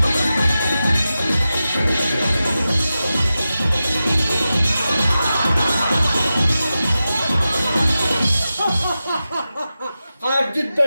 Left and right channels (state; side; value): inverted; both; correlation -0.92